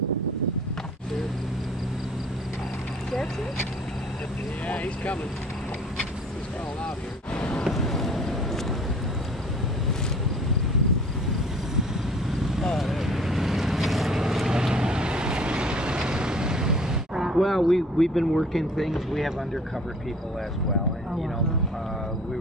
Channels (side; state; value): both; normal; correlation 0.50